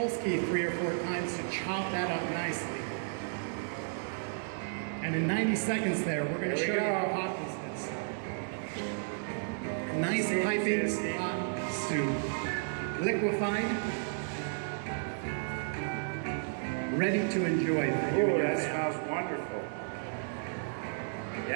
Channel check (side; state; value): left; silent; digital silence